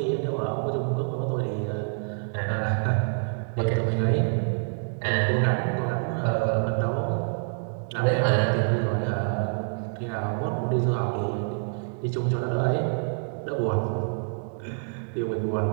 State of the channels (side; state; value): left; silent; digital silence